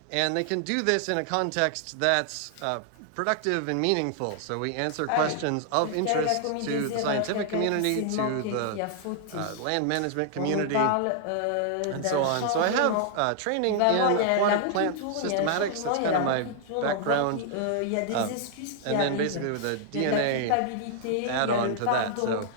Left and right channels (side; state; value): both; different; correlation 0.00